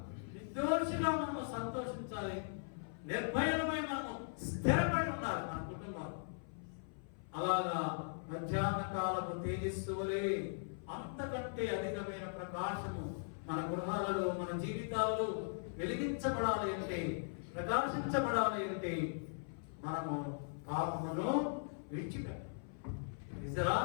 మనము సంతోషించాలి, నిర్భయులమై మనము స్థిరపడి ఉండాలి మన కుటుంబాలు. అలాగా మధ్యాహ్న కాలపు తేజస్సు వలె అంతకంటే అధికమైన ప్రకాశము మన గృహాలలో, మన జీవితాలలో వెలిగించబడాలి అంటే, ప్రకాశించబడాలి అంటే మనము పాపమును విడిచిపెట్టాలి.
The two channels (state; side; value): silent; right; 51 dB below the other